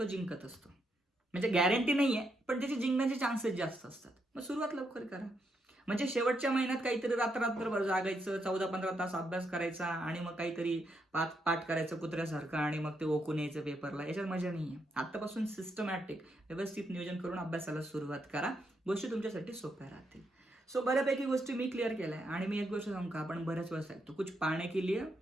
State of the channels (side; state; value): both; normal; correlation 0.79